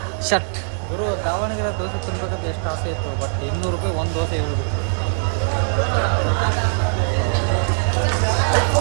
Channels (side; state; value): left; silent; 65 dB below the other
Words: Shut ಗುರು, ದಾವಣಗೆರೆ ದೋಸೆ ತಿನ್ಬೇಕಂತ ಎಷ್ಟು ಆಸೆ ಇತ್ತು, ಬಟ್ 200 ರೂಪಾಯಿ ಒಂದು ದೋಸೆ ಹೇಳ್ಬೇಕು.